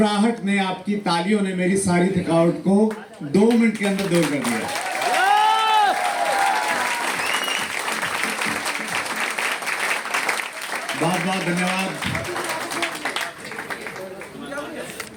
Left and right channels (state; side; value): identical; both; correlation 1.00